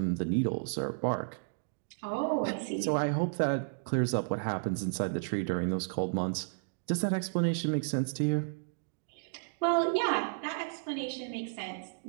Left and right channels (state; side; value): silent; left; digital silence